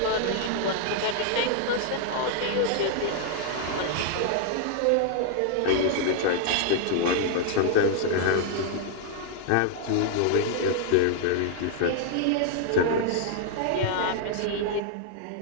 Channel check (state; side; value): different; both; correlation 0.00